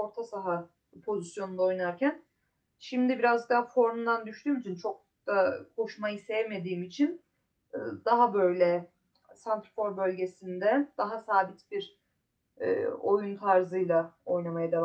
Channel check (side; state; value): both; identical; correlation 1.00